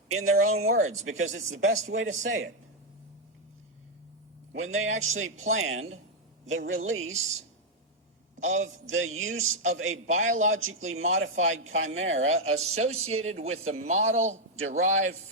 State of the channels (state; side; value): normal; both; correlation 0.00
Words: in their own words, because it's the best way to say it. When they actually planned the release of the use of a biologically modified chimera associated with the model derived